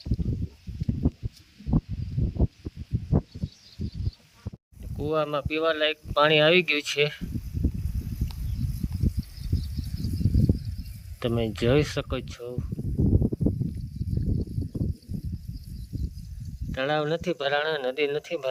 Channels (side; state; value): both; identical; correlation 1.00